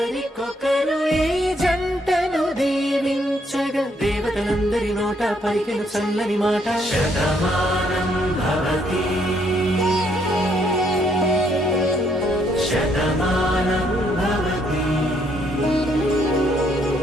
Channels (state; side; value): normal; both; correlation 0.71